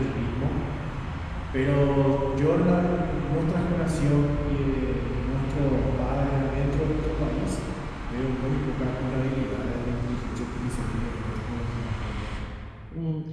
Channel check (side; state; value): both; identical; correlation 1.00